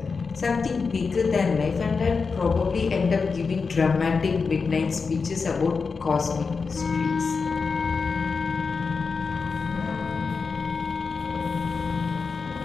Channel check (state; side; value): quieter; right; 4.9 dB